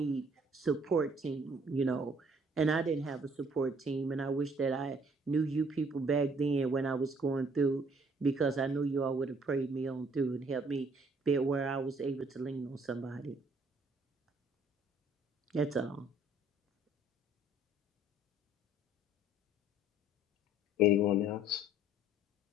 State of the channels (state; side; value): normal; both; correlation 0.60